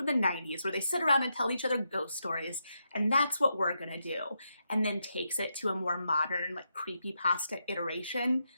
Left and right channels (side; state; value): both; inverted; correlation -0.83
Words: the 90s where they sit around and tell each other ghost stories. And that's what we're going to do. And then takes it to a more modern, like creepypasta iteration.